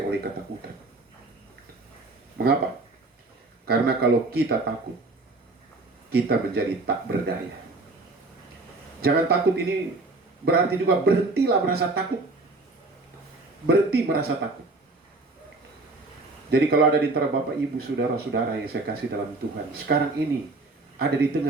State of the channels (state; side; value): quieter; left; 3.3 dB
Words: oleh ketakutan. Mengapa? Karena kalau kita takut, kita menjadi tak berdaya. Jangan takut ini berarti juga berhentilah merasa takut. Berhenti merasa takut. Jadi kalau ada di antara Bapak, Ibu, Saudara-saudara yang saya kasih dalam Tuhan, sekarang ini ada di